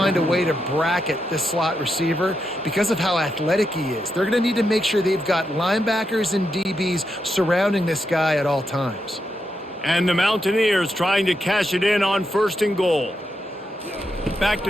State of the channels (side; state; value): both; normal; correlation 0.84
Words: a way to bracket this slot receiver because of how athletic he is. They're going to need to make sure they've got linebackers and DBs surrounding this guy at all times. And the Mountaineers trying to cash it in on 1st and goal. Back